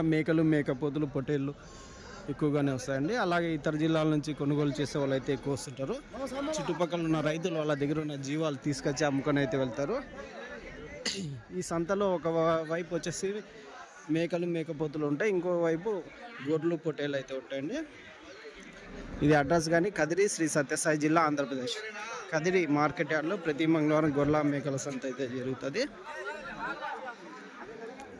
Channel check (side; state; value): both; identical; correlation 1.00